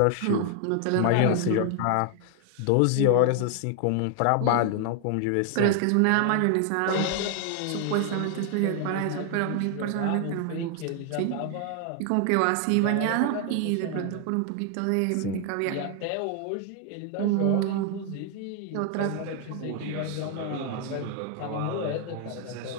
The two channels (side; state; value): both; different; correlation 0.00